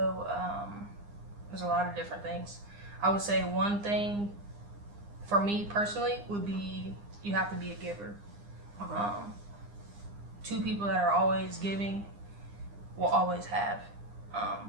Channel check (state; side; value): late; left; 9.8 ms